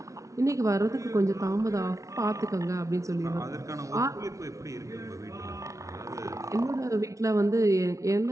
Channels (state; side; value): late; left; 0.15 ms